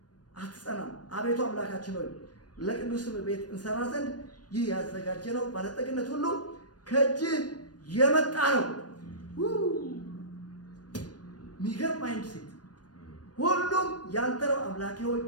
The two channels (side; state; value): right; late; 0.69 ms